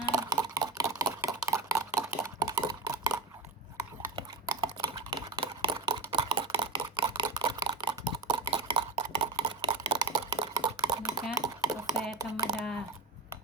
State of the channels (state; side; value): quieter; left; 4.3 dB